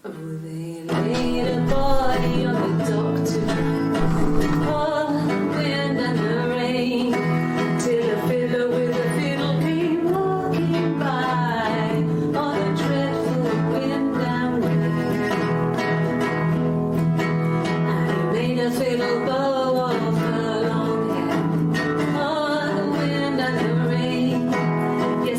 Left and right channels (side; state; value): both; identical; correlation 1.00